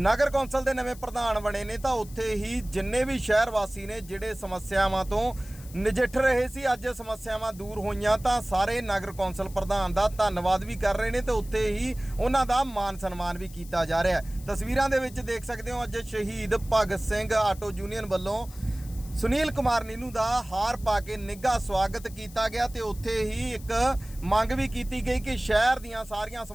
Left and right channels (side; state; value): left; noise; hiss, 20 dB below the sound